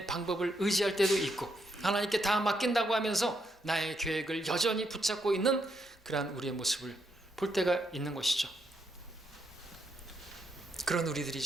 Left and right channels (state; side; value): normal; both; correlation 0.78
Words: 방법을 의지할 때도 있고 하나님께 다 맡긴다고 하면서 나의 계획을 여전히 붙잡고 있는 그러한 우리의 모습을 볼 때가 있는 것이죠. 그런